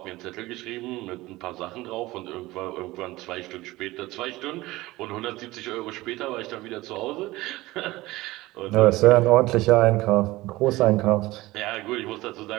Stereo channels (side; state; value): left; quieter; 19.0 dB